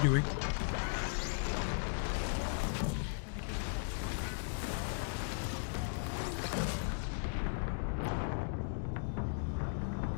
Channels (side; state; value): right; silent; digital silence